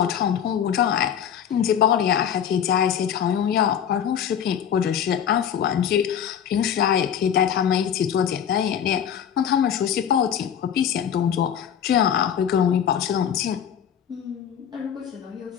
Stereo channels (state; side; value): quieter; right; 8.8 dB